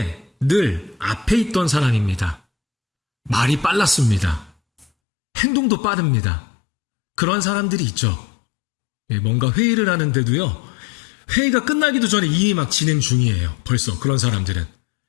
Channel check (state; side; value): drops out; right; at 4.9 s